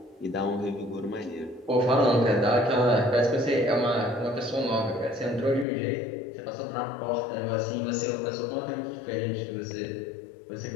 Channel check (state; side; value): drops out; right; at 5.7 s